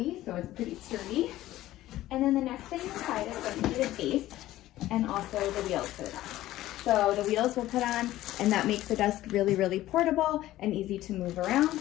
so it's pretty sturdy. And then the next thing inside is going to be the base and also the wheels for the desk. So the wheels we'll put on, and that makes the desk really, really portable and easy to move around.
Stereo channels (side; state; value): right; quieter; 15.1 dB